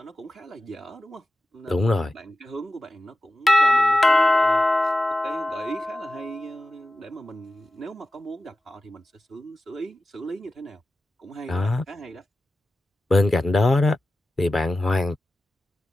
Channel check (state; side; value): normal; both; correlation 0.93